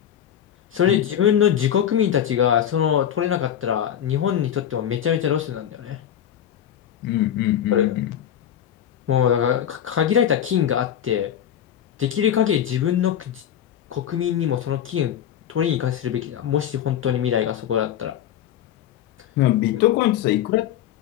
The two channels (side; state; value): right; quieter; 10.1 dB